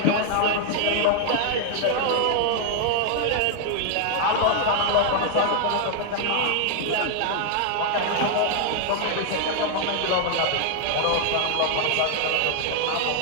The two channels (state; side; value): different; both; correlation 0.00